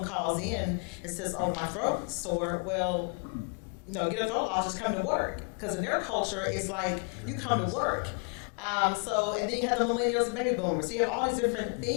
calls in and says, "Oh, my throat's sore," well, get a throat loss, just come to work. Because in their culture, it's like you come to work. And then you have the millennials and baby boomers. So you have all these different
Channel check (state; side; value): quieter; right; 38.9 dB